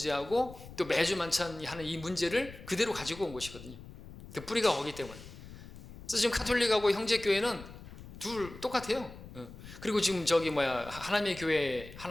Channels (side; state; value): left; noise; rumble, 15 dB below the sound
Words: 또 매주 만찬하는 이 문제를 그대로 가지고 온 것이거든요. 그 뿌리가 거기 때문에. 그래서 지금 카톨릭하고 형제교회는 둘 똑같아요. 그리고 지금 하나님의